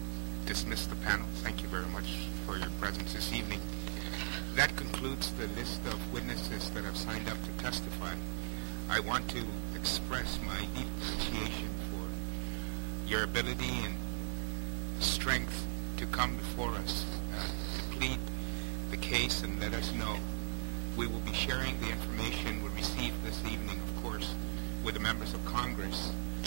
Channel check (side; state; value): left; silent; digital silence